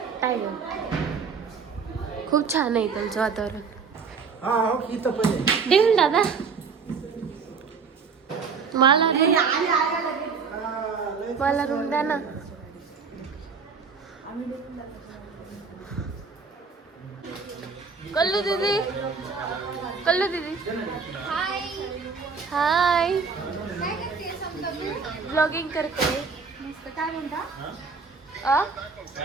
टायगर. खूप छान आहे त्यांचं वातावरण. देऊन दादा मला रूम द्या ना. कल्लू दीदी हाय. हाय. काय करते समजा तू? ब्लॉगिंग करते. मस्त. काय म्हणता?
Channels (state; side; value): quieter; left; 5.4 dB